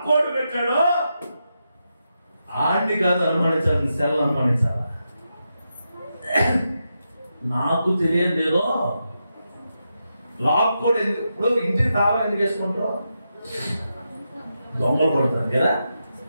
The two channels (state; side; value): inverted; both; correlation -0.86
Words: పెట్టాడో ఆడిని కాదు అనుమానించాలి, సెల్ అనుమానించాలా. నాకు తెలియదు ఏదో లాక్కోడు ఎందుకు. ఇప్పుడు ఇంటికి తాళం ఎందుకు వేసుకుంటారు? దొంగలు పడతారు కదా,